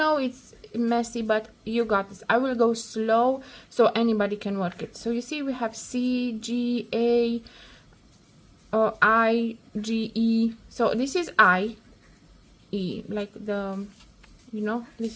it's messy, but you got this. I will go slow so anybody can work it. So you see we have C, G, A, I, G, E. So this is I, E, like the,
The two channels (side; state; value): both; identical; correlation 1.00